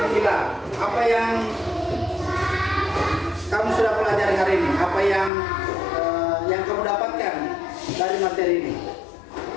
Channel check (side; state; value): right; drops out; at 5.3 s